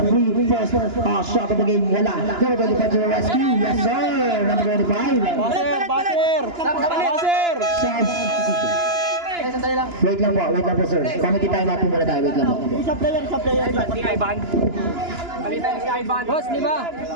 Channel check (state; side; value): late; left; 2.9 ms